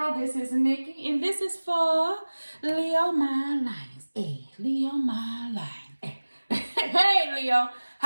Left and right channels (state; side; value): inverted; both; correlation -1.00